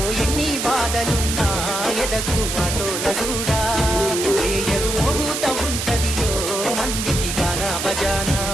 ఎన్ని బాధలున్నా ఎదకు ఆటోల చూడా ఏయరు మోగుత ఉంటదిలో మందికి గానా బజానా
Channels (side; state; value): right; noise; hiss, 3 dB below the sound